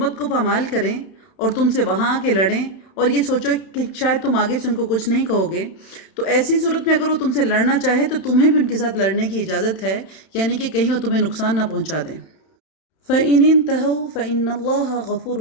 کو پامال کریں اور تم سے وہاں آ کے لڑیں اور یہ سوچو کہ شاید تم آگے سے ان کو کچھ نہیں کہو گے، تو ایسی صورت میں اگر وہ تم سے لڑنا چاہے تو تمہیں بھی ان کے ساتھ لڑنے کی اجازت ہے، یعنی کہ کہیں وہ تمہیں نقصان نہ پہنچا دیں۔ فَإِنِ انْتَهَوْا فَإِنَّ اللَّهَ غَفُورٌ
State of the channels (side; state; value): right; late; 31 ms